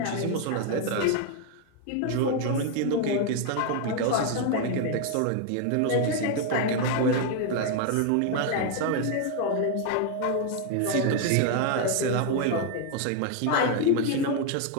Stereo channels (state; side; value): different; both; correlation 0.01